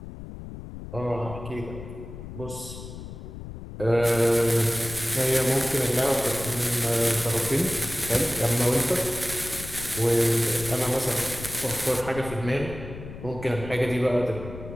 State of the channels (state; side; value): noise; left; rumble, 12 dB below the sound